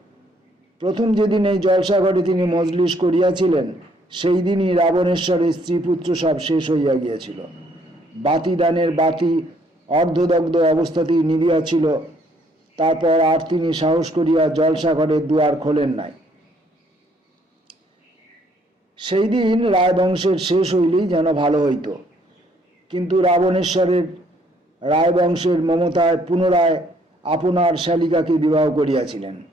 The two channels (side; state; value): both; normal; correlation 0.65